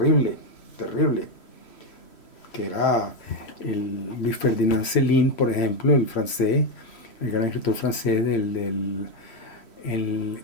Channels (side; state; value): right; late; 3.1 ms